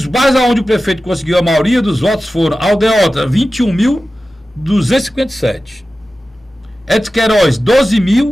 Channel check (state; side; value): normal; both; correlation 0.95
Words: bairros onde o prefeito conseguiu a maioria dos votos foram Aldeota, 21.257. Edson Queiroz,